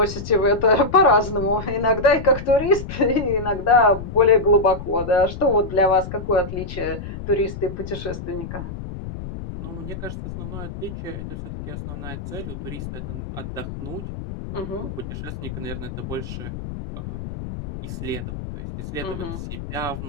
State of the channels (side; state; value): left; noise; rumble, 9 dB below the sound